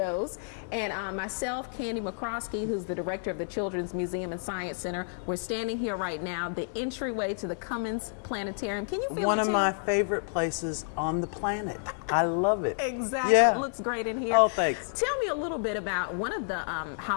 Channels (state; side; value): silent; right; digital silence